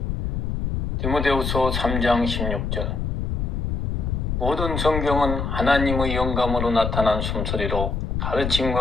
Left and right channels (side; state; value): left; noise; rumble, 2 dB below the sound